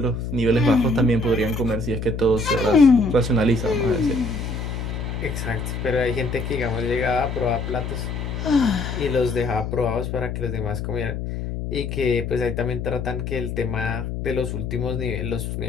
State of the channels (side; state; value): left; noise; hum, 4 dB below the sound